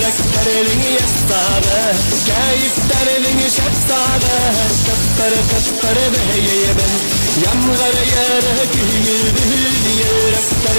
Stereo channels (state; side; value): inverted; both; correlation -1.00